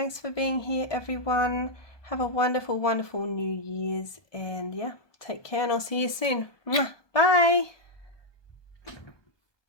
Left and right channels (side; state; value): right; late; 1.2 ms